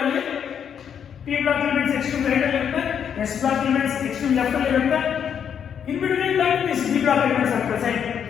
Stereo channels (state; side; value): quieter; right; 8.1 dB